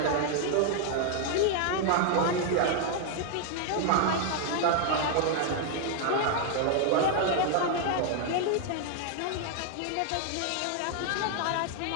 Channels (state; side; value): different; both; correlation 0.00